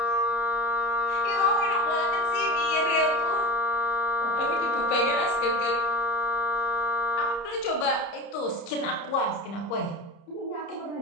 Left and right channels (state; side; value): late; right; 30 ms